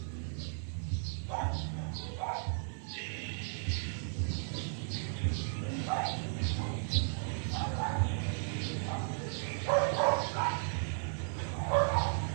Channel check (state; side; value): silent; left; 54 dB below the other